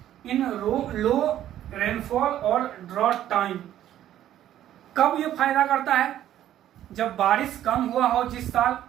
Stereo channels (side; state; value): left; quieter; 12.0 dB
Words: इन लो रेनफॉल और ड्रॉट टाइम, कब ये फायदा करता है, जब बारिश कम हुआ हो जिस साल,